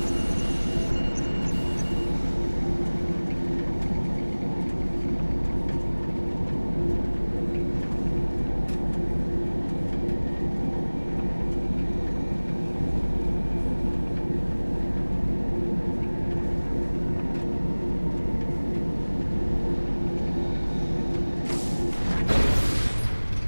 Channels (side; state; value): both; inverted; correlation -1.00